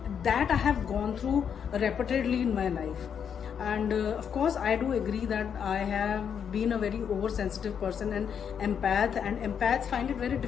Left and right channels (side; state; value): right; quieter; 7.7 dB